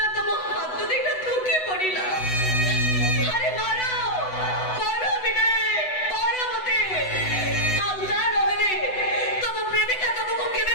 तम हाथ देखा धोकी पड़िला अरे मारो मारो विनय मारो मते आउता रहे तम प्रेमिका तुमको केबे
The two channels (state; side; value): late; right; 8.0 ms